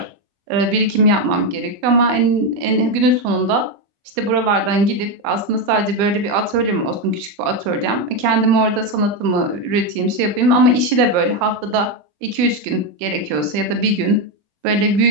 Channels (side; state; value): left; late; 20 ms